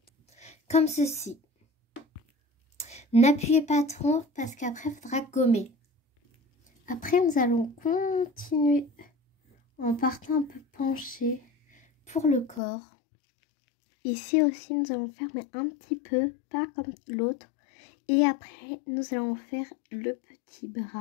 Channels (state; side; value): drops out; right; at 12.6 s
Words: Comme ceci. N'appuyez pas trop parce qu'après, il faudra gommer. Après, nous allons continuer en partant un peu penché pour le corps. Ici aussi, nous allons faire mais un petit peu, pas comme l'autre. Et après, nous allons faire le petit